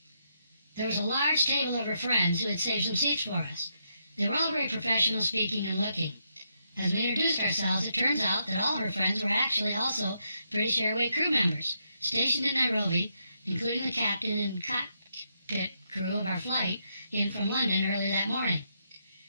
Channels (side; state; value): both; inverted; correlation -0.79